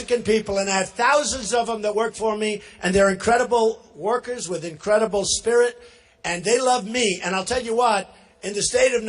people, and I have thousands of them that work for me, and they're incredible workers with incredible spirit, and they love me. And I'll tell you what, in the state of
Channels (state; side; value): identical; both; correlation 1.00